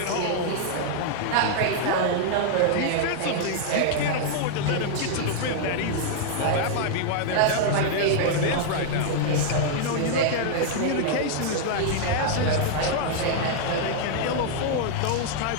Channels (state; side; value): different; both; correlation -0.01